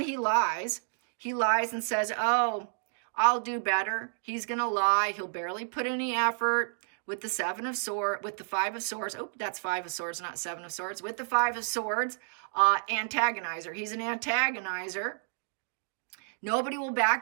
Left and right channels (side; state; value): left; silent; digital silence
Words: he lies. He lies and says, oh, I'll do better. He's going to lie. He'll barely put any effort. With the 7 of Swords, with the 5 of Swords. Oh, that's 5 of Swords, not 7 of Swords. With the 5 of Swords, antagonizer. He's an antagonizer. Nobody will